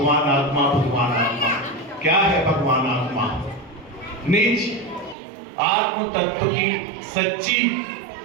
आत्मा, भगवान आत्मा। क्या है भगवान आत्मा? निज आत्म तत्व की सच्ची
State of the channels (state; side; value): drops out; left; at 5.2 s